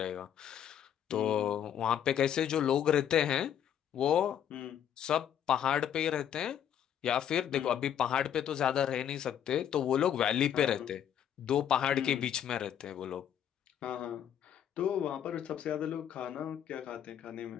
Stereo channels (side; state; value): right; quieter; 9.6 dB